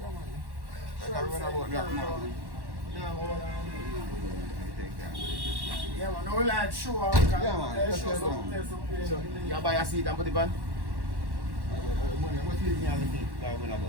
Yeah, man. No, we like show. Yeah, man. So, you buy a seat and put it on?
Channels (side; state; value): left; late; 1.1 ms